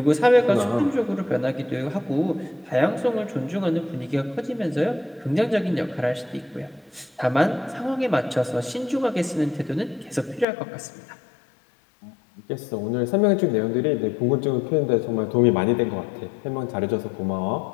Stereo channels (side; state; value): right; drops out; at 10.5 s